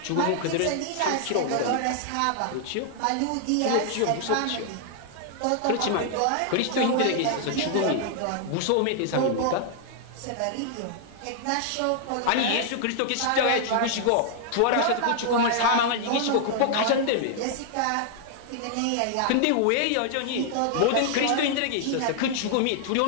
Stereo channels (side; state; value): both; different; correlation 0.00